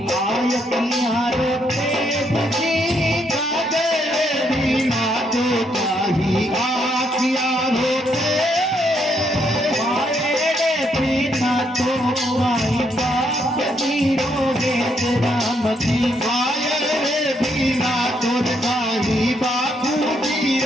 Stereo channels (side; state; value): both; normal; correlation 0.74